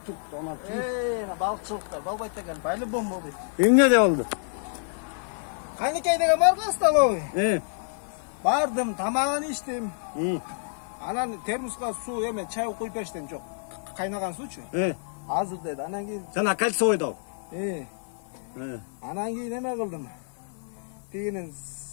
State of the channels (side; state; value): right; silent; 59 dB below the other